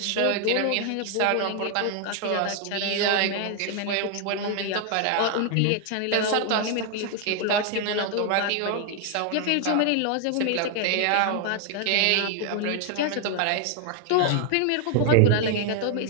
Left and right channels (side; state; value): both; different; correlation 0.00